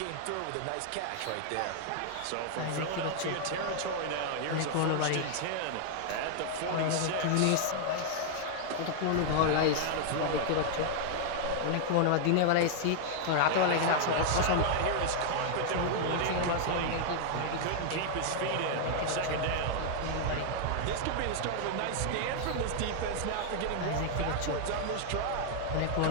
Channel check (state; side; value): different; both; correlation 0.00